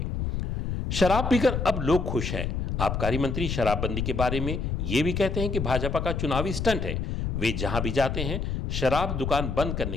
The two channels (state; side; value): noise; left; rumble, 2 dB below the sound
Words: शराब पीकर अब लोग खुश हैं। आबकारी मंत्री शराबबंदी के बारे में यह भी कहते हैं कि भाजपा का चुनावी स्टंट है। वे जहां भी जाते हैं शराब दुकान बंद करने